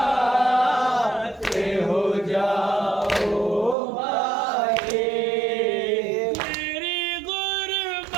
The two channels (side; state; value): left; drops out; at 3.8 s